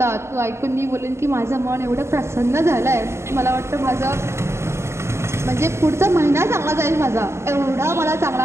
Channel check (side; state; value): left; late; 0.13 ms